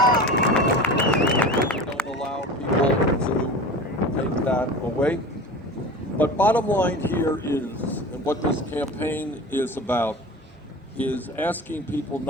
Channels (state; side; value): normal; both; correlation 0.34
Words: way. But bottom line here is, and what this campaign is about, is asking people